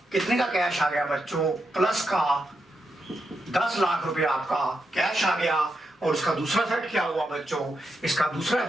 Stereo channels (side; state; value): both; normal; correlation 0.84